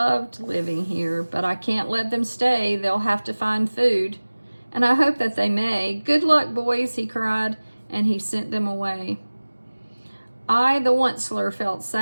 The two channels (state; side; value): inverted; both; correlation -1.00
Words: living here, but I can't let them stay. They'll have to find food, and I hope that they may. "Good luck, boys," he cried, and he sent them away. I, the Onceler, felt